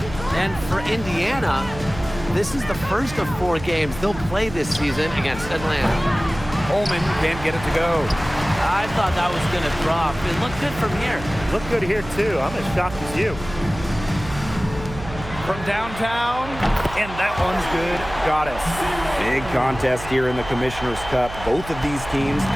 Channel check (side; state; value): right; noise; hum, 12 dB below the sound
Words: And for Indiana, this is the first of 4 games they'll play this season against Atlanta. Coleman can't get it to go. I thought that was going to drop. It looked good from here. Looked good here, too. I'm as shocked as you. From downtown, and that one's good. Goddess. Big contest here in the Commissioner's Cup. Both of these teams